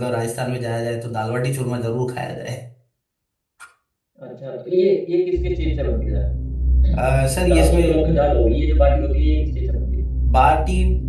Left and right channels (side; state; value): both; identical; correlation 1.00